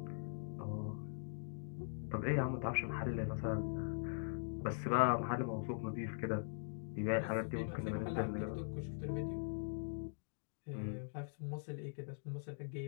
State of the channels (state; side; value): silent; right; digital silence